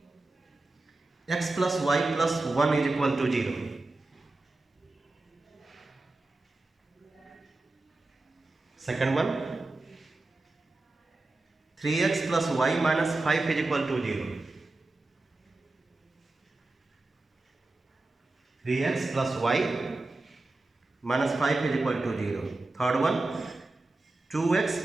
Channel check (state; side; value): quieter; left; 3.1 dB